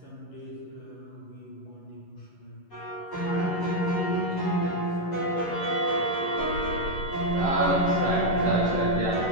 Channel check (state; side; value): late; right; 11 ms